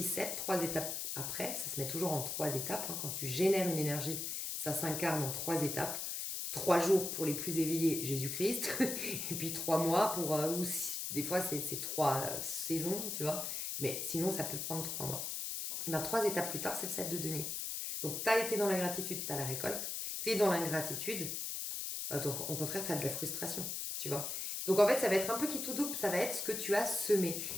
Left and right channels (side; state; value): left; noise; hiss, 3 dB below the sound